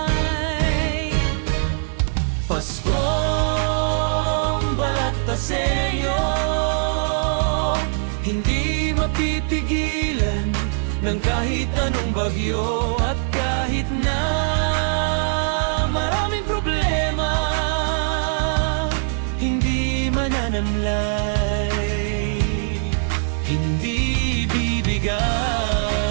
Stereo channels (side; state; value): left; silent; digital silence